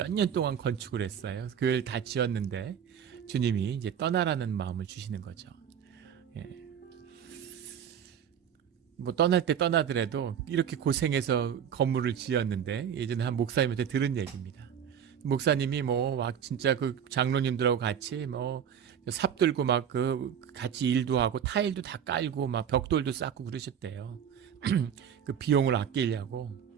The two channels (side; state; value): left; quieter; 8.4 dB